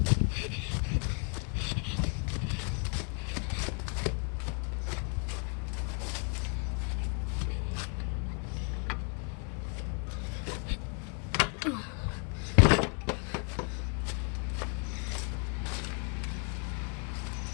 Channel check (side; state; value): right; quieter; 39.0 dB